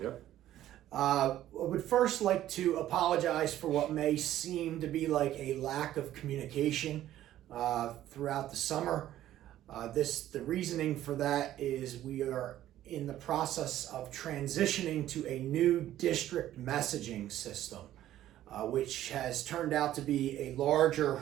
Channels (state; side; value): quieter; left; 13.0 dB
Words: Yep. I would first like to apologize for what may seem to be like a lack of communication throughout the summer. The reasoning for that is we are in the process of transitioning to a new district messaging system, which has turned out to be a larger